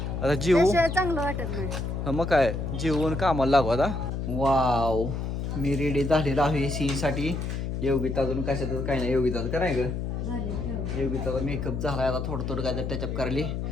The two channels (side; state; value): left; noise; hum, 3 dB below the sound